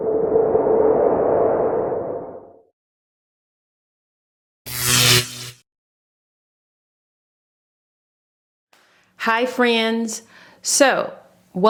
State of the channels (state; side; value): identical; both; correlation 1.00